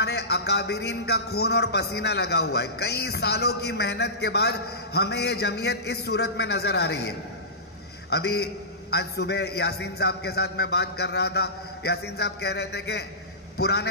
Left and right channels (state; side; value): normal; both; correlation -0.19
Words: اکابرین کا خون اور پسینہ لگا ہوا ہے. کئی سالوں کی محنت کے بعد ہمیں یہ جمعیت اس صورت میں نظر آ رہی ہے. ابھی آج صبح یاسین صاحب کے ساتھ میں بات کر رہا تھا. یاسین صاحب کہہ رہے تھے کہ